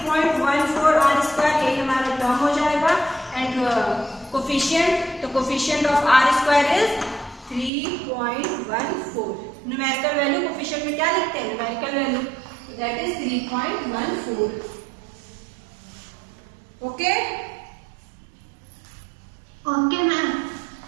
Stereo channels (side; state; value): left; drops out; at 7.7 s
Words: r स्क्वायर, यही हमारा टर्म हो जाएगा। एंड कोफिशिएंट, तो coefficient of r square is 3.14। Numerical value coefficient में क्या लिखते हैं? Numerical value, that is 3.14। Okay okay ma'am.